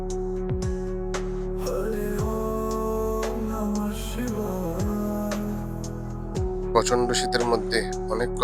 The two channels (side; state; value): both; identical; correlation 1.00